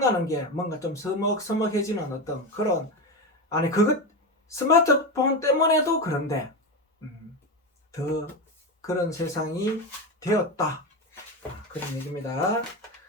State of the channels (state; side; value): normal; both; correlation 0.17